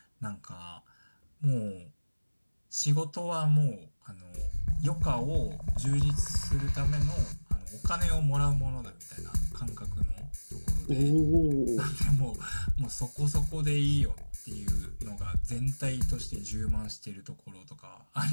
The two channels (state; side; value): inverted; both; correlation -1.00